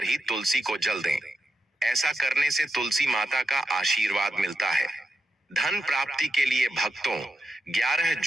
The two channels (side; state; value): both; normal; correlation 0.85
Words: ही तुलसी को जल दें। ऐसा करने से तुलसी माता का आशीर्वाद मिलता है। धन प्राप्ति के लिए भक्तों, 11